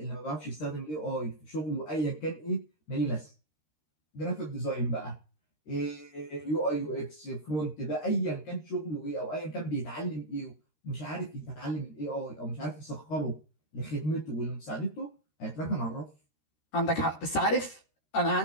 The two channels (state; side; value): late; right; 13 ms